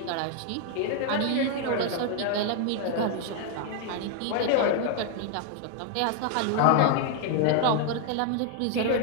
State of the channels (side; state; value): both; different; correlation 0.00